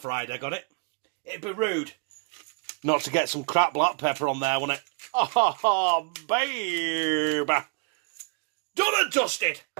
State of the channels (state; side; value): quieter; left; 36.8 dB